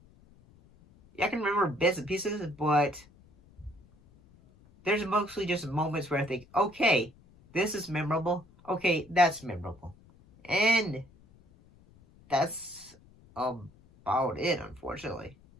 Yeah, I can remember bits and pieces, but there's mostly just moments where I think, okay, this is memorable. Okay, that's memorable. And that's about it, unfortunately.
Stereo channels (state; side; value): noise; left; rumble, 27 dB below the sound